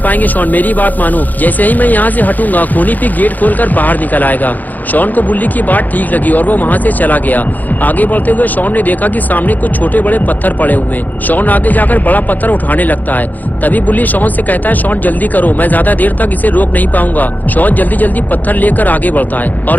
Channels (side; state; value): right; late; 0.083 ms